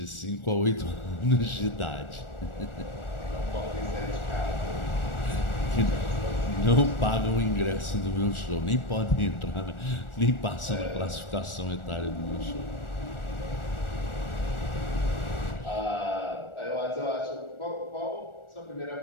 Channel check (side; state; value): right; late; 1.4 ms